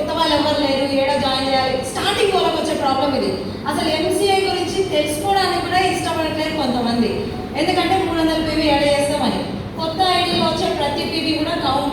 వాళ్ళు ఎవరు లేరు, ఏడా జాయిన్ చేయాలి. స్టార్టింగ్ వాళ్ళకి వచ్చే ప్రాబ్లం ఇది. అసలు ఎంసీఏ గురించి తెలుసుకోవడానికి కూడా ఇష్టపడట్లేదు కొంతమంది. ఎందుకంటే 300 పీవీ యాడ్ చేస్తామని. కొత్త ఐడీలో వచ్చే ప్రతి పీవీ కూడా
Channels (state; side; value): identical; both; correlation 1.00